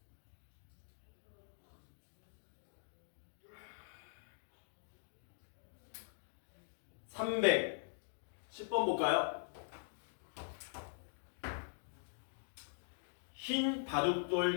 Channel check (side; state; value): right; silent; digital silence